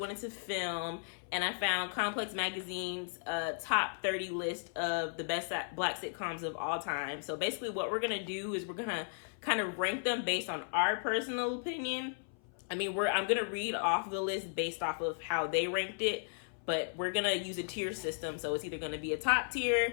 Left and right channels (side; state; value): right; silent; 54 dB below the other